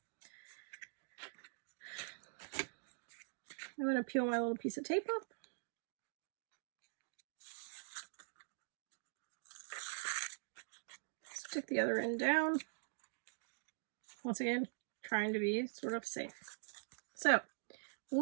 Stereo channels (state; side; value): silent; left; digital silence